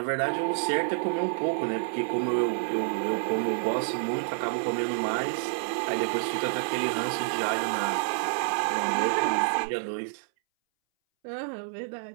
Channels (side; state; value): left; silent; 59 dB below the other